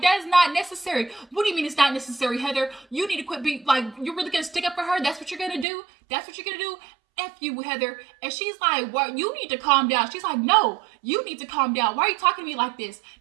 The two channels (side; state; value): left; drops out; at 5.7 s